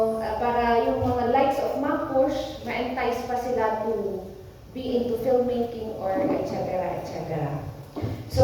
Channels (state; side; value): identical; both; correlation 1.00